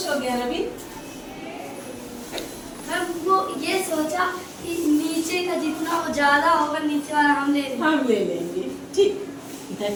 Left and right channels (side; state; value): both; identical; correlation 1.00